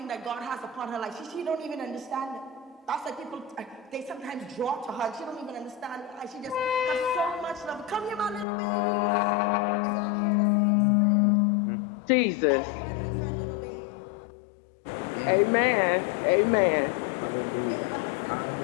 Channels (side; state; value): right; drops out; at 8.5 s